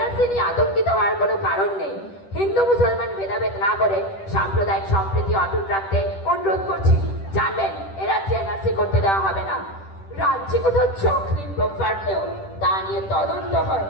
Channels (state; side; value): late; right; 10 ms